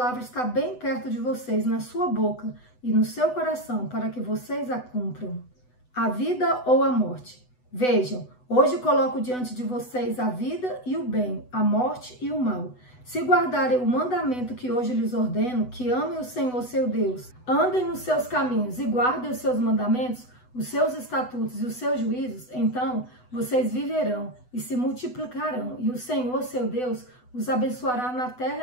está bem perto de vocês, na sua boca e no seu coração, para que vocês a cumpram. A vida ou a morte. Vejam, hoje coloco diante de vocês a vida e o bem, a morte e o mal. Se guardarem o mandamento que hoje lhes ordeno, que amem o Senhor seu Deus, andem nos seus caminhos e guardem os seus mandamentos, os seus estatutos e os seus juízos, então vocês viverão e se multiplicarão, e o Senhor seu Deus os abençoará na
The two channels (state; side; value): late; right; 8.0 ms